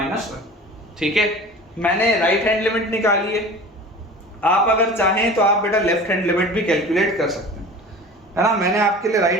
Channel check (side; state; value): both; normal; correlation 0.38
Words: 1, ठीक है। मैंने राइट हैंड लिमिट निकाली है, आप अगर चाहें तो आप बेटा लेफ्ट हैंड लिमिट भी कैलकुलेट कर सकते हैं, है ना। मैंने आपके लिए